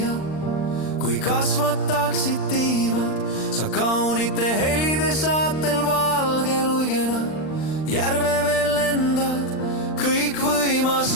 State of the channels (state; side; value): late; right; 39 ms